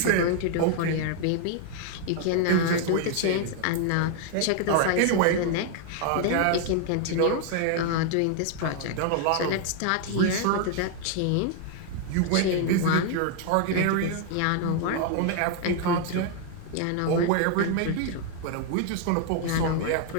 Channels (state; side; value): different; both; correlation 0.00